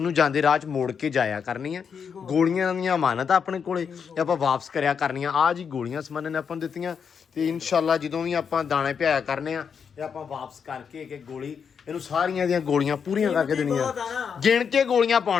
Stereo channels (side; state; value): right; quieter; 6.7 dB